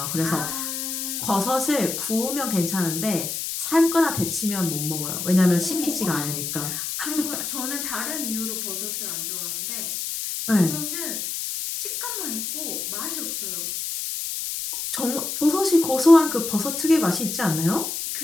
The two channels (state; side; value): noise; left; hiss, 4 dB below the sound